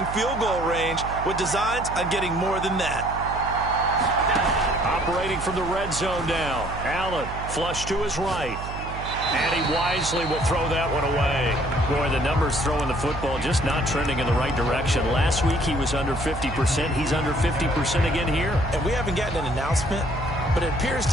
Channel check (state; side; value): noise; right; hum, 9 dB below the sound